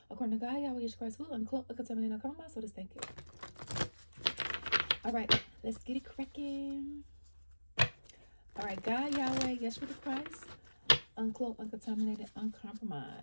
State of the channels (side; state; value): both; inverted; correlation -1.00